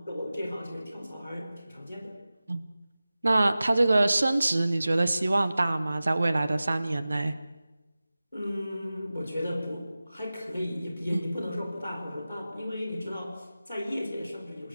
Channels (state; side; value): inverted; both; correlation -0.96